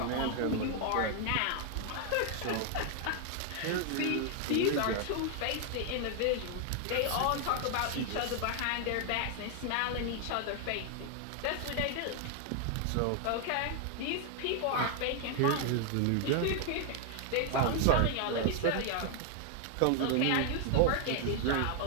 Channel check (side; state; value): both; different; correlation 0.00